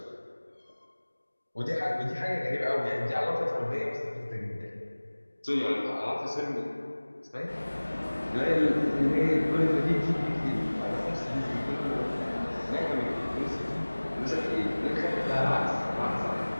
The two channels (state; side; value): inverted; both; correlation -1.00